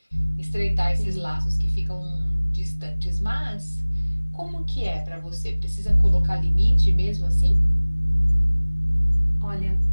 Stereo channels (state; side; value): inverted; both; correlation -1.00